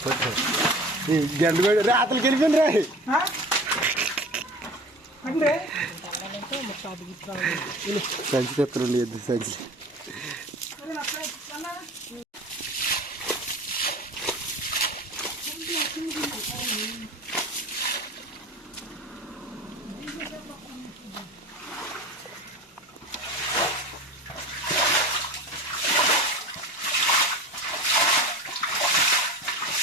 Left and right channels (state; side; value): normal; both; correlation 0.37